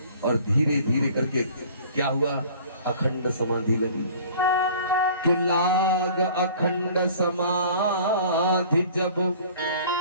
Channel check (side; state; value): both; inverted; correlation -0.48